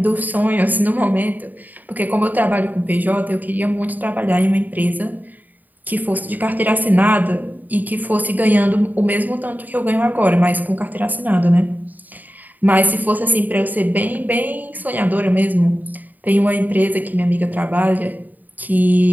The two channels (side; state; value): left; late; 0.084 ms